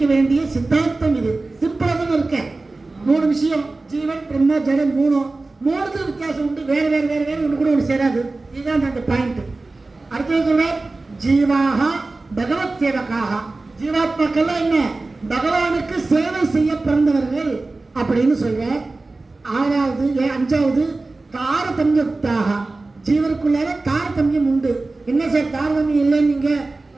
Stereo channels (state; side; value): quieter; left; 3.3 dB